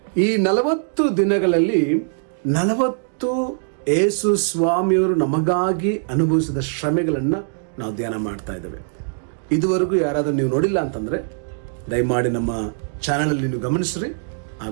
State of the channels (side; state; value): left; silent; digital silence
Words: ಈ 40 ದಿನಗಳಲ್ಲಿ 40 ಯೇಸು ಸ್ವಾಮಿಯವರು ನಮಗಾಗಿ ಅನುಭವಿಸಿದ ಶ್ರಮೆಗಳನ್ನ ನಾವು ಧ್ಯಾನ ಮಾಡ್ತಾ ಇದ್ದೇವೆ. ಇದುವರೆಗೂ ಯಾರಾದ್ರೂ ನೀವು ನೋಡಿಲ್ಲ ಅಂತಂದ್ರೆ ದಯಮಾಡಿ ನಮ್ಮ ಚಾನೆಲ್ ಅಲ್ಲಿ ನೀವು ಗಮನಿಸ್ರಿ, ಆ